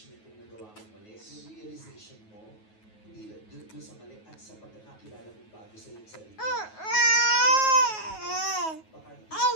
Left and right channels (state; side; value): late; right; 9.4 ms